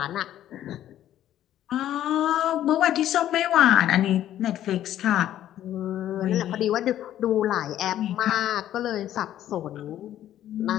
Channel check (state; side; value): quieter; right; 12.0 dB